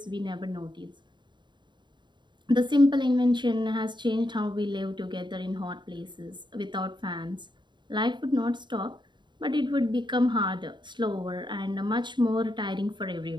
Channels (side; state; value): left; late; 0.22 ms